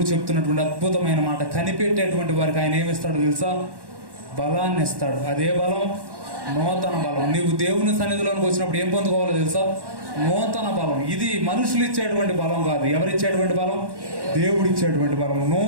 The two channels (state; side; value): late; left; 1.1 ms